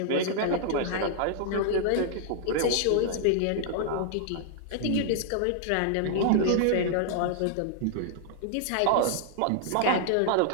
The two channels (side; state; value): both; different; correlation -0.01